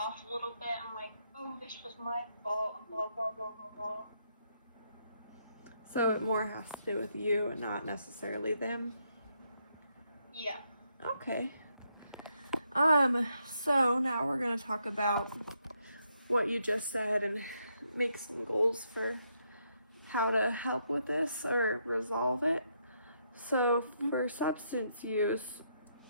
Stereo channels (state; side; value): inverted; both; correlation -0.77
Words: a little bit. I'm like, oh, this was my fault, blah, blah, blah, blah, blah. So it more has to do with you and not necessarily them? Yeah. Okay. So now we're gonna talk about what you just said and make some goals for how to help with this or resolve it. So for substance use,